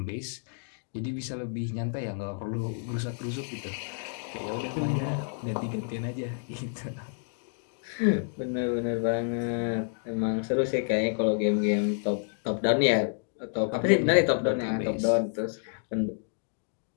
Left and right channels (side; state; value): right; silent; 58 dB below the other